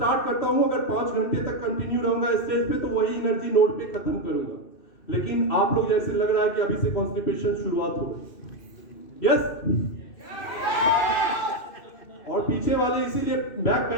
करता हूं, अगर 5 घंटे तक कंटिन्यू रहूंगा स्टेज पे तो वही एनर्जी नोट पे खत्म करूंगा। लेकिन आप लोग जैसे लग रहा है कि अभी से कॉन्स्टिपेशन शुरुआत हो गई। यस? और पीछे वाले इसीलिए बैक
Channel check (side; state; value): right; late; 2.6 ms